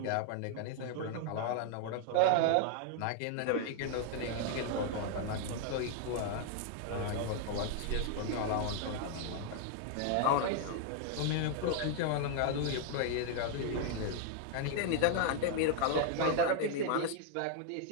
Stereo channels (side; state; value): both; different; correlation 0.00